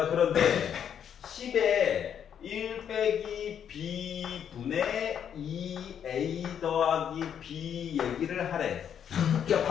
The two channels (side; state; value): right; quieter; 8.7 dB